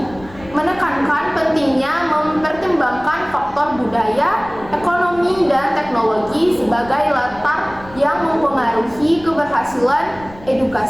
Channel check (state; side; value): noise; left; rumble, 20 dB below the sound